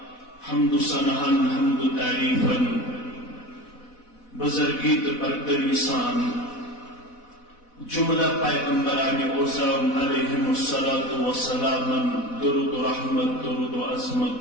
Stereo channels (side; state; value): right; late; 4.1 ms